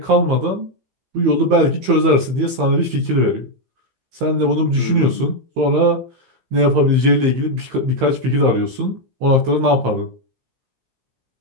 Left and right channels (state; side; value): late; left; 15 ms